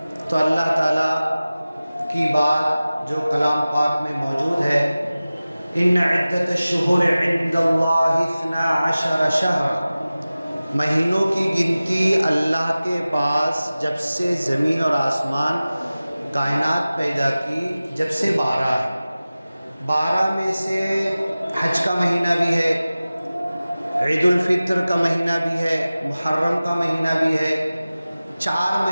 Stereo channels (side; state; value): both; inverted; correlation -0.97